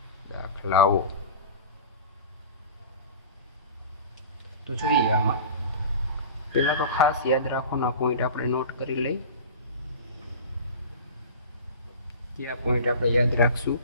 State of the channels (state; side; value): inverted; both; correlation -0.35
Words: દાખલાઓ. તો જોઈએ, આમાં પહેલા તો ખાસ યાદ રાખવાના પોઈન્ટ આપણે નોટ કરી લઈ. કયા પોઈન્ટ આપણે યાદ રાખશું?